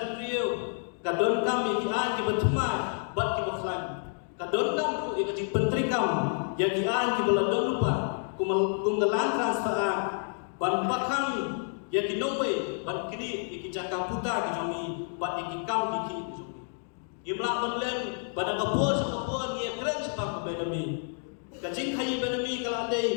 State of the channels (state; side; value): silent; right; 58 dB below the other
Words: beliau kadon kami kian ki berteman bat ki baklan. Kadon kam tu ia kajing bantrikam yang kian ki beladon lupa kumgelan transfer ban bakam yang ki nowe ban kini iki jakam puta ki jomi bat iki kam ki jomi. Imla menlen pada kapur sekapur ia keren sebab kebedami. kajing khayi benami kala